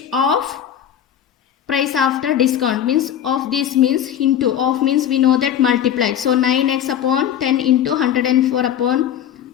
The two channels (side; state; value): right; quieter; 9.9 dB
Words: of price after discount, means of this means into, of means we know that multiplied. So 9x upon 10 into 104 upon